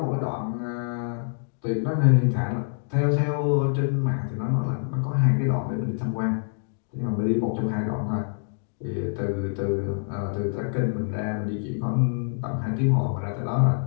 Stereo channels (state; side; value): silent; right; digital silence